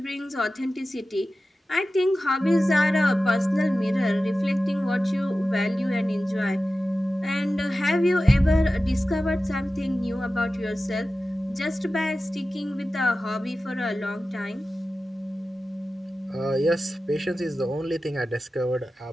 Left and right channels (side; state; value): both; normal; correlation 0.94